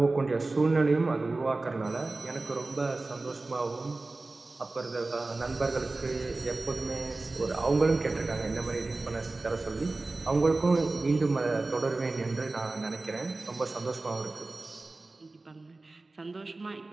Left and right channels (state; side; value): quieter; left; 3.3 dB